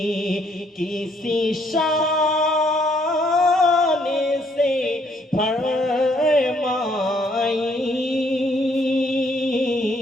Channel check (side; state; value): both; normal; correlation 0.68